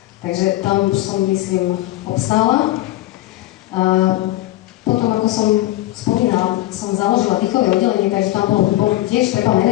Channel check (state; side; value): quieter; right; 16.4 dB